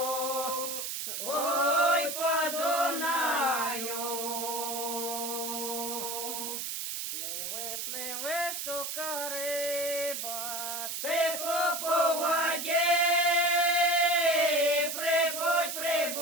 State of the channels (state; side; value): noise; right; hiss, 4 dB below the sound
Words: ой, по Дунаю. пливе щука риба, Тихо по воді,